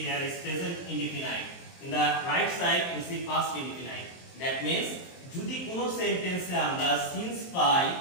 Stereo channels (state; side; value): late; right; 23 ms